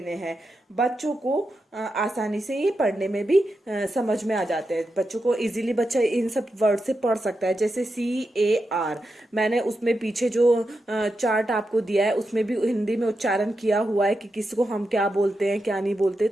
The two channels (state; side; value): normal; both; correlation 0.87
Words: हैं। बच्चों को आसानी से ये पढ़ने में भी समझ में आ जाते हैं। बच्चों को इजीली बच्चा इन सब वर्ड से पढ़ सकता है। जैसे CAR, मैंने उसमें पीछे जो चार्ट आपको दिया है उसमें भी हिंदी में उच्चारण किया हुआ है कि किसको हम क्या बोलते हैं क्या नहीं बोलते,